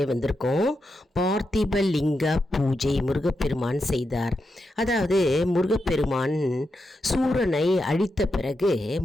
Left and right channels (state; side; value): normal; both; correlation 0.86